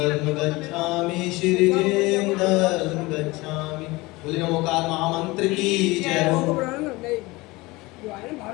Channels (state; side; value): quieter; right; 22.0 dB